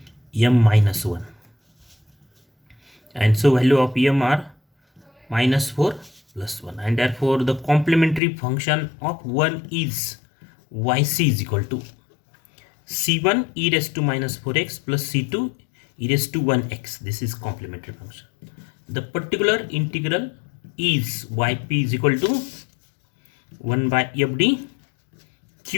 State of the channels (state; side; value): drops out; right; at 8.2 s